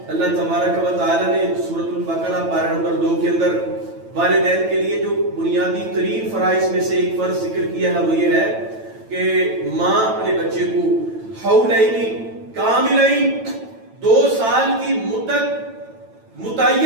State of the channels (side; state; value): left; late; 9.0 ms